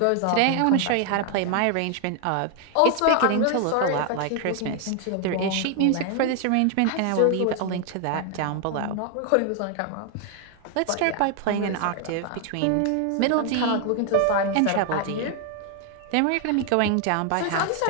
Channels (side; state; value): both; different; correlation 0.00